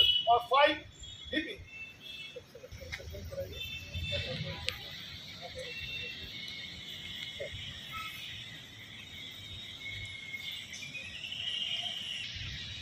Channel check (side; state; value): both; identical; correlation 1.00